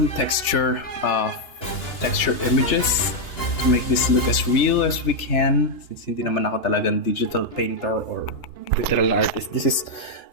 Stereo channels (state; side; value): late; right; 2.9 ms